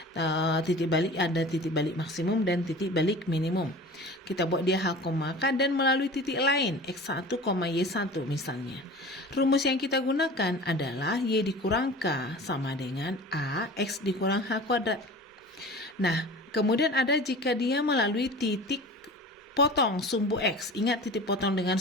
balik ada titik balik maksimum dan titik balik minimum. Kita buat dia H, K dan melalui titik lain X1, Y1 misalnya. Rumus yang kita gunakan adalah Y dikurang K sama dengan A X dikurang H kuadrat. Nah, kemudian ada jika dia melalui titik potong sumbu X. Ingat titik potong dengan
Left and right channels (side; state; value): both; normal; correlation 0.38